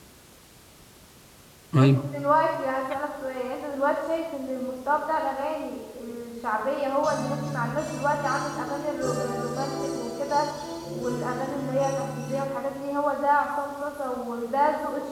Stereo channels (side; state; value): both; identical; correlation 1.00